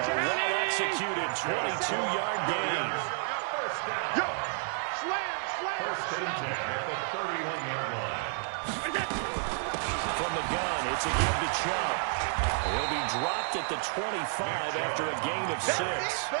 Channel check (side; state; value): left; silent; digital silence